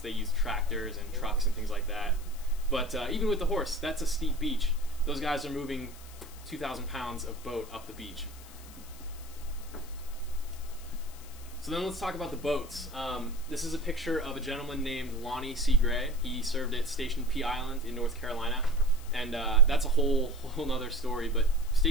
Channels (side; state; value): left; noise; hiss, 19 dB below the sound